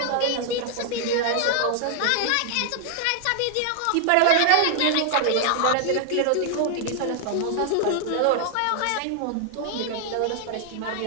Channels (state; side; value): different; both; correlation 0.00